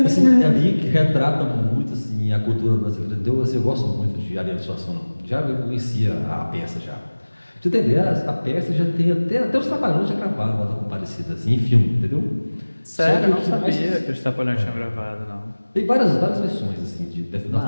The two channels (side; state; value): both; inverted; correlation -1.00